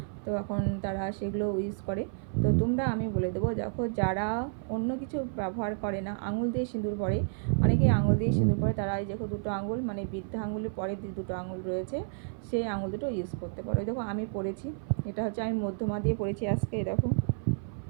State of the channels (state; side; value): silent; left; 55 dB below the other